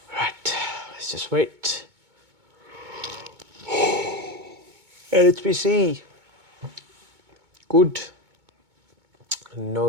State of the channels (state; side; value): late; left; 2.2 ms